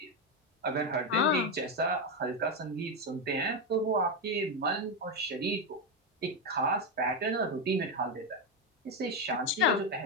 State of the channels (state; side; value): normal; both; correlation 0.08